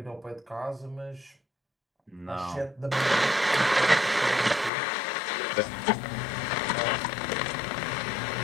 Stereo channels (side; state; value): right; drops out; at 4.7 s